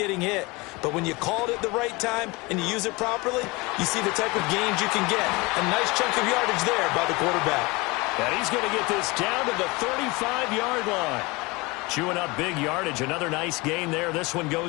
hit. But when you call it at the right time and you use it properly, you see the type of gains you can get. A nice chunk of yardage there by the quarterback. And he's going to get this down to the 35-yard line. Chewing up big yardage. Another nice gain there. This one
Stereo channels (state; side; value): quieter; right; 24.5 dB